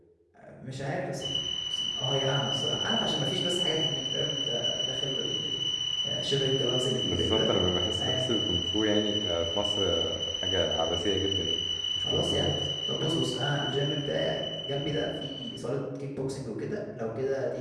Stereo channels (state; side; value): identical; both; correlation 1.00